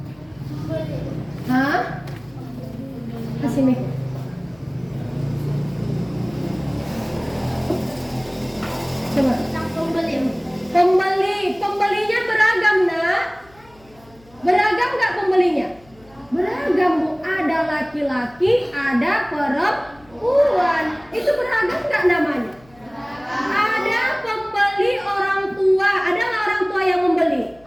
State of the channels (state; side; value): noise; left; hum, 28 dB below the sound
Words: Hah? Kasih Mik. Coba. Pembelinya beragam, Nak. Beragam nggak pembelinya? Beragam, Bu. Ada laki-laki, ada perempuan. Itu beragam nggak namanya? Ada pembeli orang tua. Ada nggak orang tua yang membeli?